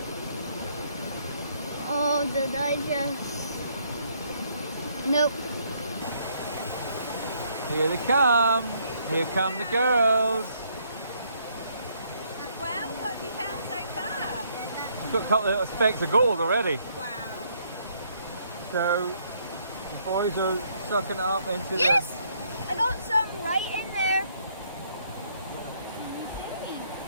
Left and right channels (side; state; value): both; inverted; correlation -0.69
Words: Oh, did I just... Nope. here they come. Here come the girls. Well, what have you found so far? It's got a couple of little specks of gold already. Wow. So the boys are sucking it up into Yes! I got some right in there.